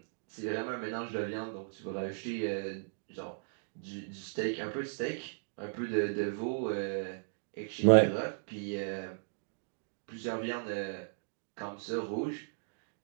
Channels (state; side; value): silent; left; digital silence